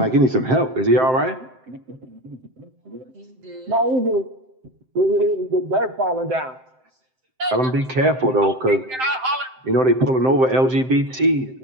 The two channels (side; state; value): left; late; 7.7 ms